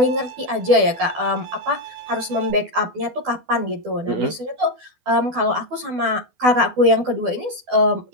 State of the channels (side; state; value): left; late; 12 ms